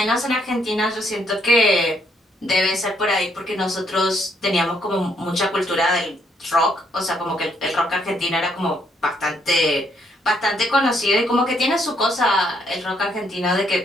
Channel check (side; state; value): both; normal; correlation 0.71